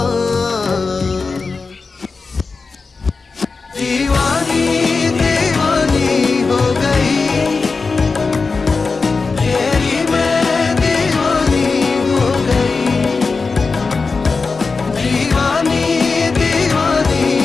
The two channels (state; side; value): quieter; right; 4.3 dB